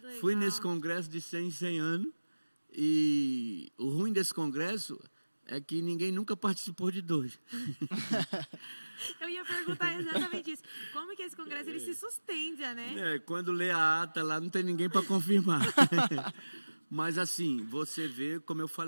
Fui nesse congresso de 100 em 100 anos. E o ruim desse congresso é que ninguém nunca participou de dois. Eu ia perguntar exatamente isso. Como que esse congresso ele se sustenta, né? Quando lê a ata lá, não tem ninguém para confirmar. Mas assim, você vê, como eu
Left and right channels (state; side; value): inverted; both; correlation -1.00